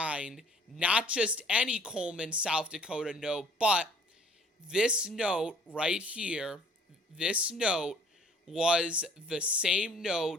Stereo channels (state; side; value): normal; both; correlation 0.55